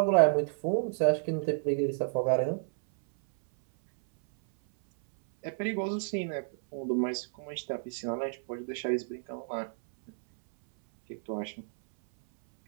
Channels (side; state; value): left; silent; 57 dB below the other